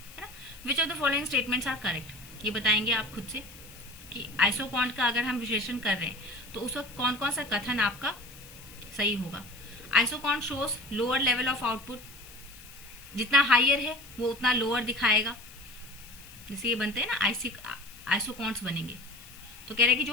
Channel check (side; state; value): left; noise; hiss, 19 dB below the sound